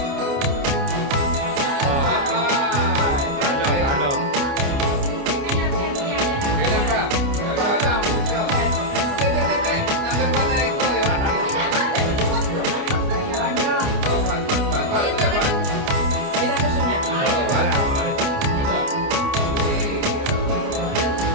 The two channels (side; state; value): left; late; 29 ms